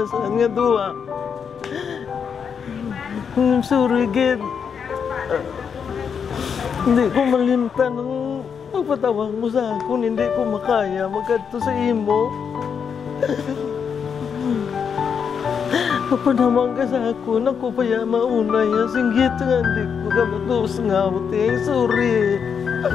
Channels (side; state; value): right; quieter; 6.8 dB